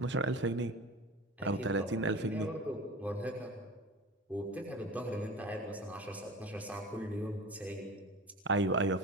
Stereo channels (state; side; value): normal; both; correlation 0.34